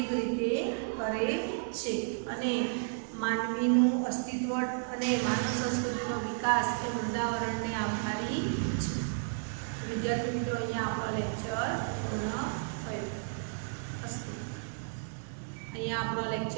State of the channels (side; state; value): left; silent; digital silence